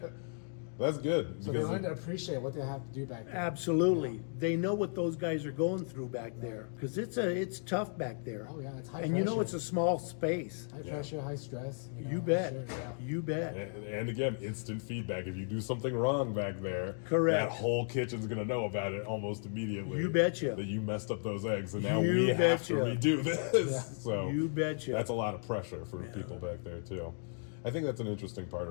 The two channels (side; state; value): right; silent; 55 dB below the other